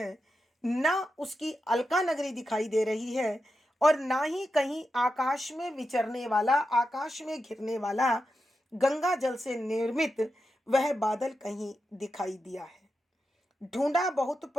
ना उसकी अलका नगरी दिखाई दे रही है, और ना ही कहीं आकाश में विचरने वाला, आकाश में घिरने वाला गंगा जल से निर्मित वह बादल कहीं दिखाई दिया है। ढूंढा बहुत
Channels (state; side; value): normal; both; correlation 0.89